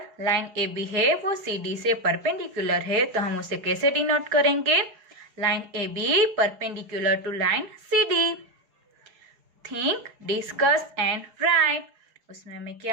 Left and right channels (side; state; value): left; late; 4.8 ms